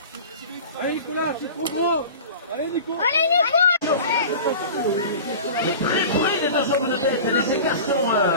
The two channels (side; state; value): both; inverted; correlation -0.36